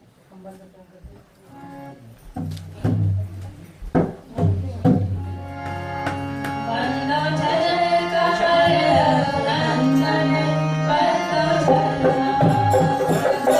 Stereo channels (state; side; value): identical; both; correlation 1.00